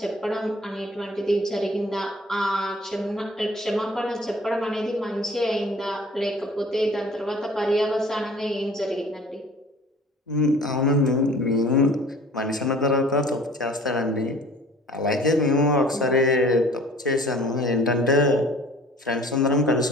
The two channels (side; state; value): both; normal; correlation 0.49